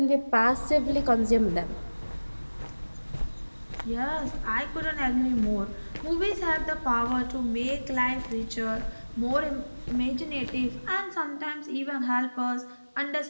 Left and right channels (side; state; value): both; inverted; correlation -1.00